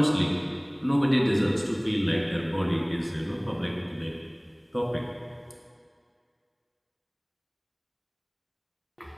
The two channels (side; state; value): both; identical; correlation 1.00